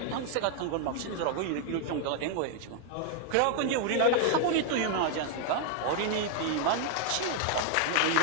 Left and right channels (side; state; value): both; different; correlation 0.00